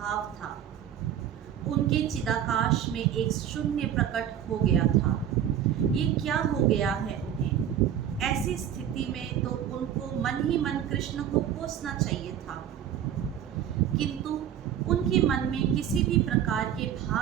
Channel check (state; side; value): quieter; left; 9.9 dB